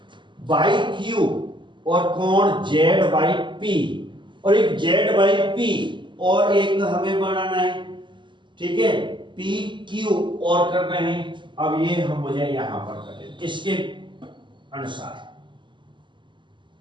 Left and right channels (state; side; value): late; left; 0.23 ms